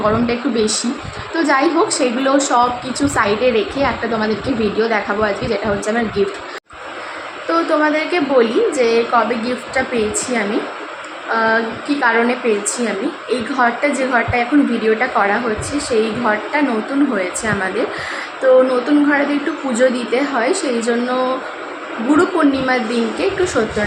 গরমটা একটু বেশি। তো যাই হোক, সেগুলো সব কিছু সাইডে রেখে একটা তোমাদেরকে ভিডিও দেখাবো আজকে, যেটা হচ্ছে আমার গিফট। তো তোমাদেরকে বলি যে কবে গিফটটা পেয়েছি আমি, কি কারণে পেয়েছি আমি। এই ঘরটা, যে ঘরটা এখন ভিডিওটা করা হচ্ছে, সেই ঘরটা নতুন হয়েছে আমাদের। তো নতুন ঘরে একটু পুজো দিতে হয়, সেই জন্য গুরু পূর্ণিমার দিনকে একটু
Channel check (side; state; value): both; identical; correlation 1.00